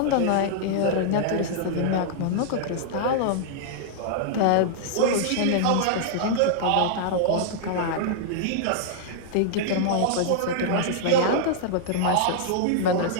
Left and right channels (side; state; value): both; different; correlation -0.01